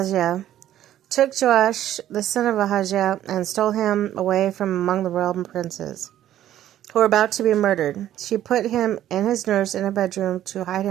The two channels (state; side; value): quieter; left; 12.2 dB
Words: took Joash, the son of Ahaziah, and stole him away from among the royal princes, who were about to be murdered. She put him and his nurse in a bedroom to hide